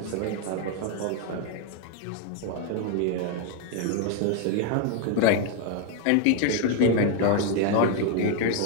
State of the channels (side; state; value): both; different; correlation 0.01